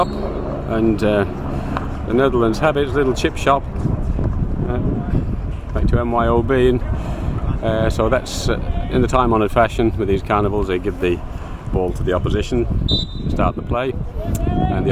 and the Netherlands have its little chip shop back to MYOB, and so that's in the time-honoured fashion with these carnivals. They give the ball to the opposition to start the play, and the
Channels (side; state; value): both; identical; correlation 1.00